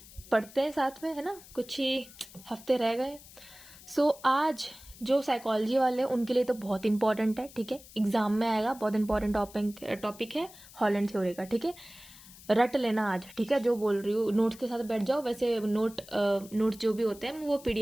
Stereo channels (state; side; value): noise; left; hiss, 20 dB below the sound